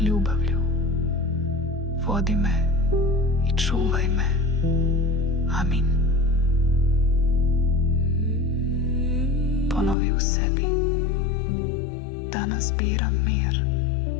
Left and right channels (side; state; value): right; drops out; at 10.0 s